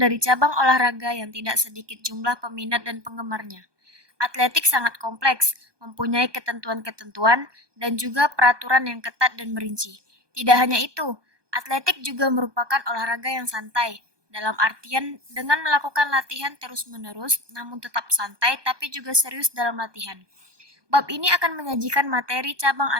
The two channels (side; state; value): left; late; 1.2 ms